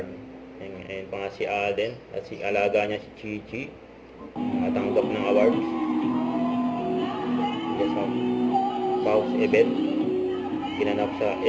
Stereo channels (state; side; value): identical; both; correlation 1.00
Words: Ayun pa nga si Alden at si alaga niya si Chichi nakatanggap ng award. Yes, Pau's event ginanap sa